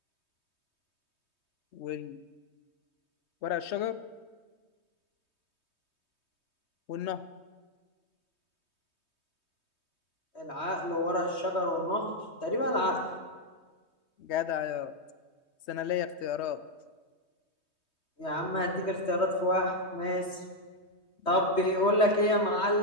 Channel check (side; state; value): right; late; 3.2 ms